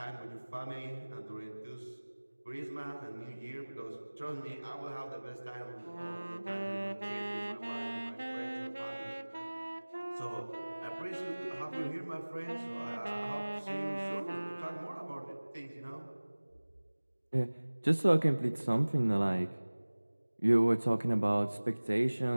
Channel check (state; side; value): inverted; both; correlation -1.00